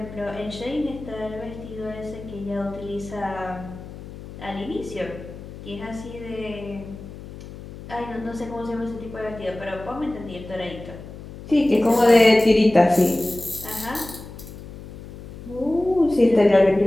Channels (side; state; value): left; noise; hum, 14 dB below the sound